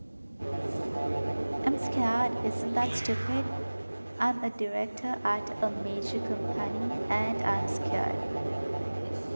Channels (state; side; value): inverted; both; correlation -1.00